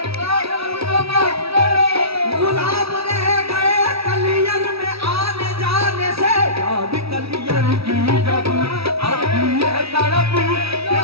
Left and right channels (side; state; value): left; late; 0.76 ms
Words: अब तो माफ करो। गुलाम रह गए कलियर में आने जाने से, याद कलियर की जब आती है तड़प